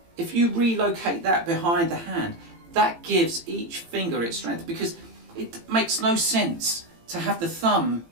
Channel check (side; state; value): left; late; 18 ms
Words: If you relocate that behind the hand, that gives each finger its strength, because it makes no sense to have the thumb